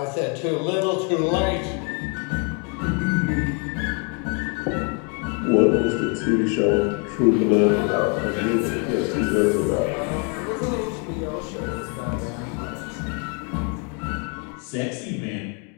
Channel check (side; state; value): right; quieter; 37.2 dB